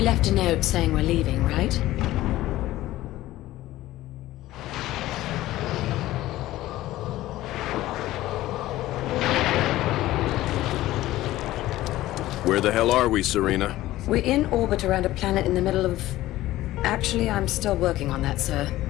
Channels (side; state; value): right; quieter; 15.9 dB